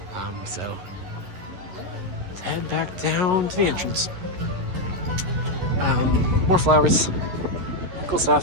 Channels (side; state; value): left; late; 11 ms